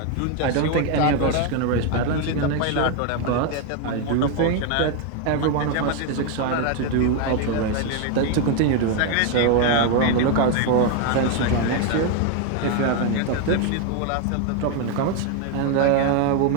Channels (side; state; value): both; different; correlation 0.01